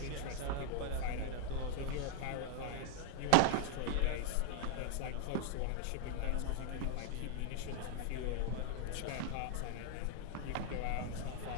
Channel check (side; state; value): both; different; correlation 0.00